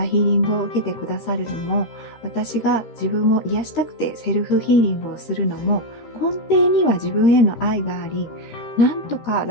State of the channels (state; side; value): late; right; 13 ms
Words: ヒーリングを受けてくださるのも、私が自分を癒したくてセルフヒーリングをするのも、根底には自分への愛があり、なんとか